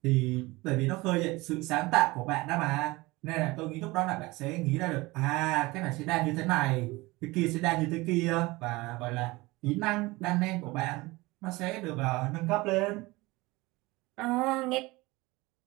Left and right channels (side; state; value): left; quieter; 21.8 dB